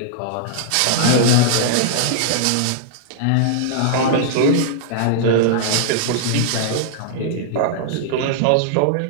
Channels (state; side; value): different; both; correlation -0.01